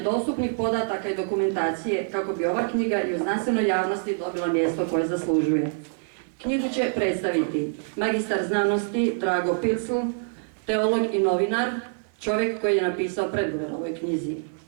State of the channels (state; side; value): silent; left; digital silence